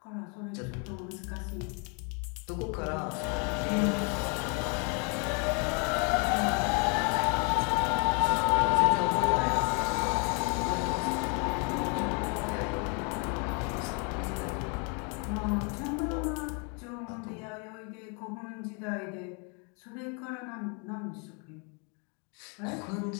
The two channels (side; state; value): right; quieter; 35.7 dB